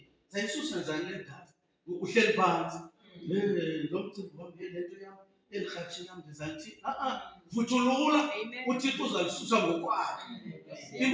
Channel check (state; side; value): identical; both; correlation 1.00